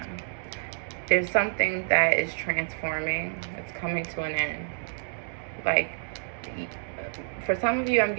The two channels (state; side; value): silent; left; digital silence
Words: There's something that is transforming. It's coming to an end. Like, for some of you, I'm